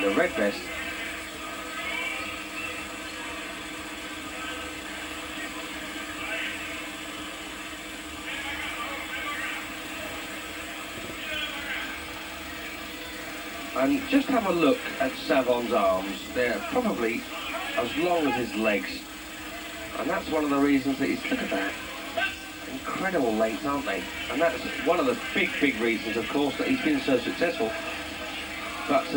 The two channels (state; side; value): identical; both; correlation 1.00